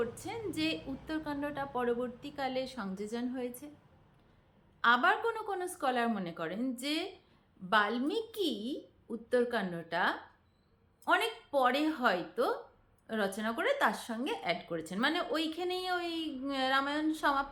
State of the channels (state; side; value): identical; both; correlation 1.00